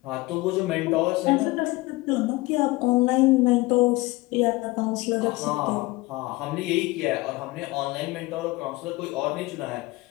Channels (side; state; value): right; quieter; 21.4 dB